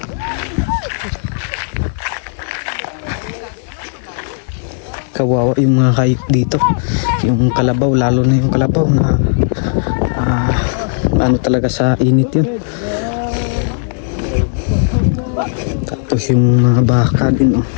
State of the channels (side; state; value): right; silent; digital silence